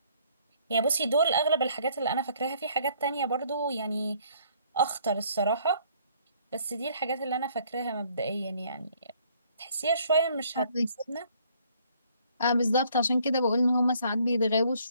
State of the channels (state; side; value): inverted; both; correlation -0.62